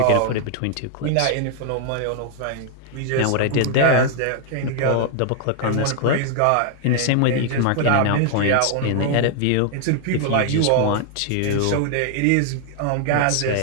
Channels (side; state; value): both; different; correlation 0.00